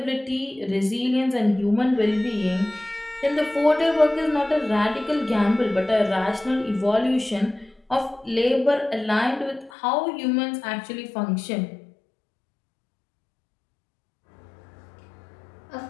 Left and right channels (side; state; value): right; drops out; at 9.7 s